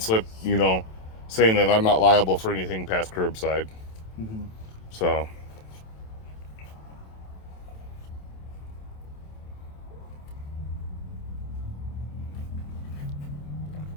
you know, saying that I'm not liable for anything past curbside. So.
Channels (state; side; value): late; right; 27 ms